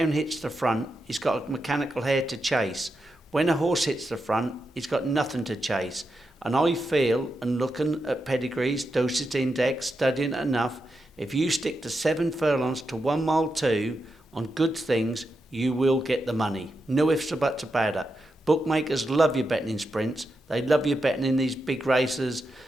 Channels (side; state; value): both; normal; correlation 0.87